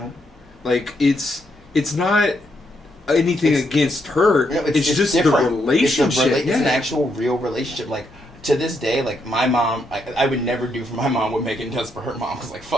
Like it's not anything against her. You know, it's just different. the relationship. It's an actual real relationship. Like to this day, like my mom, I would never do for my mom what Megan does for her mom. Cause like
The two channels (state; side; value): normal; both; correlation 0.78